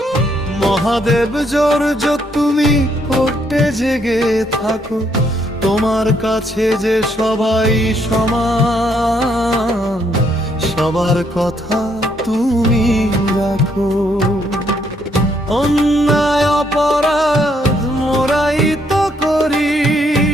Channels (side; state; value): both; normal; correlation 0.72